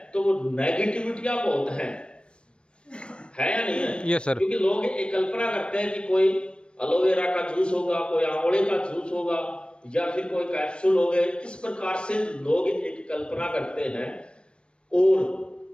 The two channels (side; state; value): right; late; 0.057 ms